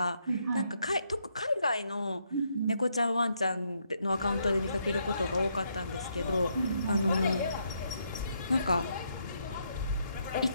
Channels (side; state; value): both; inverted; correlation -0.76